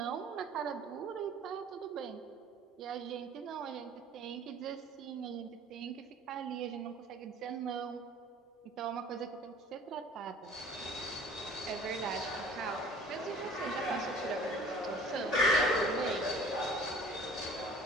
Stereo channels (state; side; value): normal; both; correlation 0.48